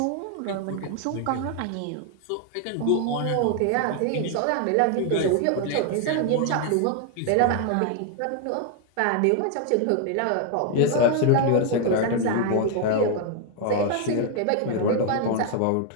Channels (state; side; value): different; both; correlation 0.00